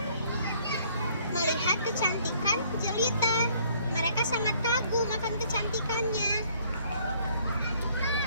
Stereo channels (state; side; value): inverted; both; correlation -0.62